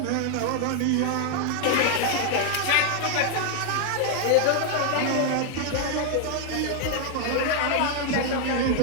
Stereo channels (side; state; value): both; different; correlation 0.00